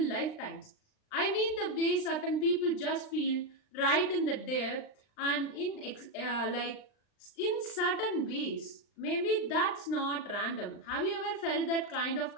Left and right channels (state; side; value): late; right; 39 ms